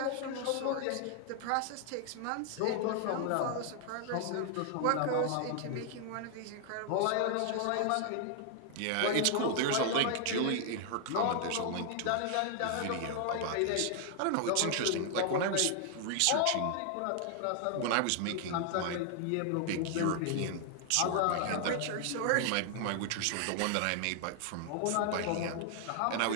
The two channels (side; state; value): both; different; correlation 0.00